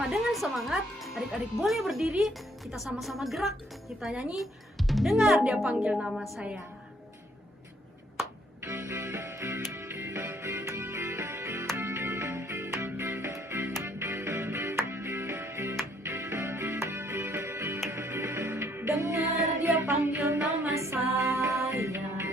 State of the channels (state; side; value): normal; both; correlation 0.66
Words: dengan semangat. Adik-adik boleh berdiri, kita sama-sama gerak. Kita nyanyi, dengar dia panggil nama saya. Dengar dia panggil nama saya.